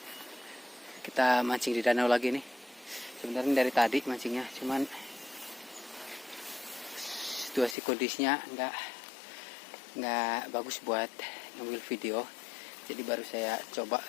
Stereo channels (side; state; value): right; drops out; at 7.8 s